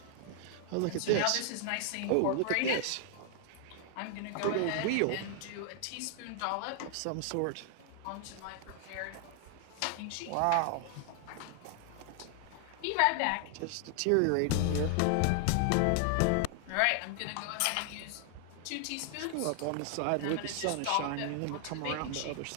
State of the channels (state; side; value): different; both; correlation 0.00